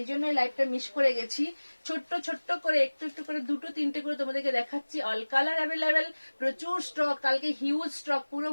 জন্যই লাইভটা মিস করে গেছি। ছোট্ট ছোট্ট করে একটু একটু করে 2-3টে করে তোমাদেরকে দেখাচ্ছি। অল কালার অ্যাভেলেবেল, প্রচুর স্টক, কালকে হিউজ স্টক, পুরো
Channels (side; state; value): both; inverted; correlation -1.00